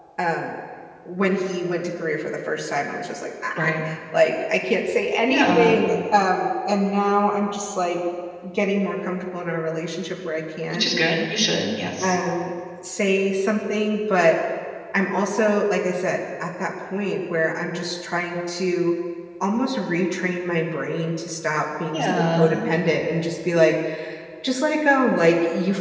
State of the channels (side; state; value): both; identical; correlation 1.00